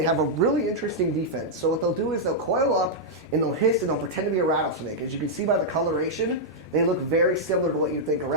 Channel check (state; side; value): normal; both; correlation -0.06